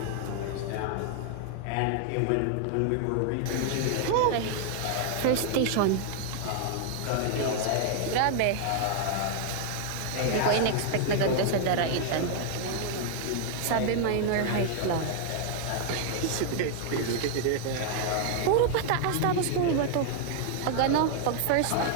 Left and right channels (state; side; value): different; both; correlation 0.00